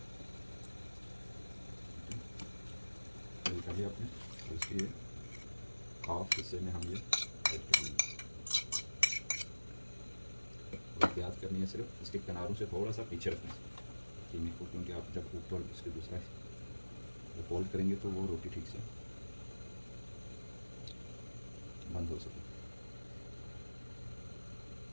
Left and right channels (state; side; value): inverted; both; correlation -1.00